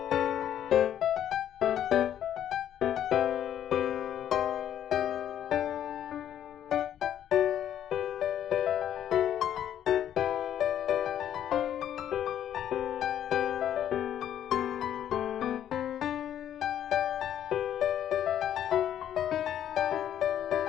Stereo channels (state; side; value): quieter; right; 10.5 dB